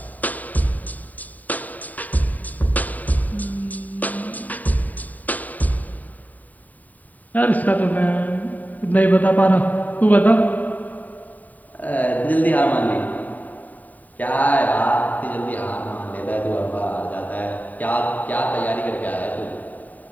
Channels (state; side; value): late; right; 0.078 ms